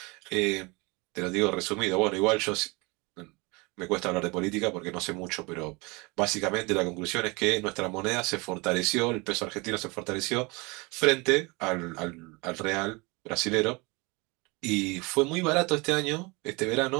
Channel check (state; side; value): quieter; left; 26.8 dB